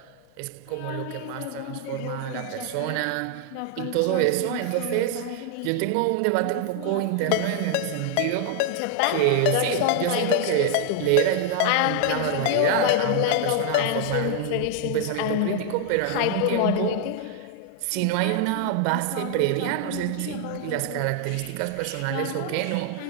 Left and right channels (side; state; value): both; different; correlation 0.00